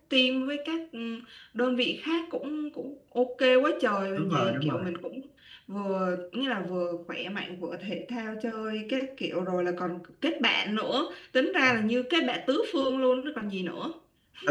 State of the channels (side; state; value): both; identical; correlation 1.00